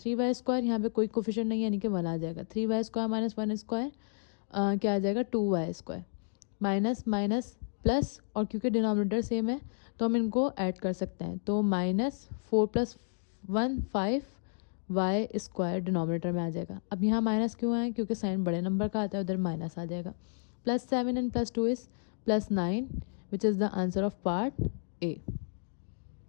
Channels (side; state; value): right; silent; digital silence